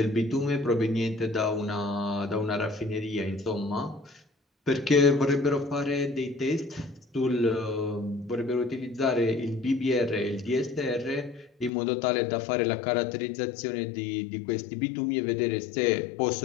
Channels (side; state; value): right; drops out; at 11.7 s